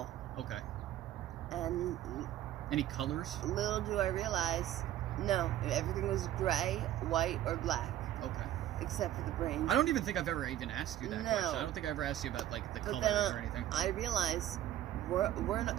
Okay. And... Any colors? Little do I realize, no, everything was gray, white, or black. Okay. Except for the brains. I don't even think I've ever even asked you that question. I don't think I ever asked you about, like, the colors or anything. I realize we're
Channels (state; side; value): quieter; left; 12.6 dB